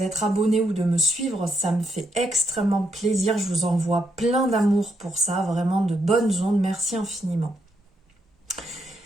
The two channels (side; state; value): both; normal; correlation 0.77